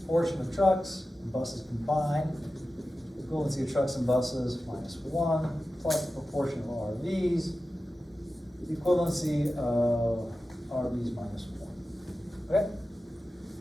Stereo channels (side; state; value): both; normal; correlation 0.93